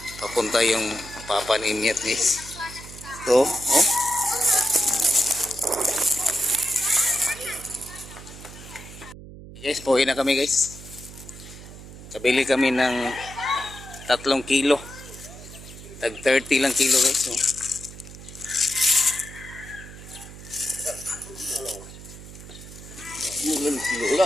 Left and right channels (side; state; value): right; noise; hum, 15 dB below the sound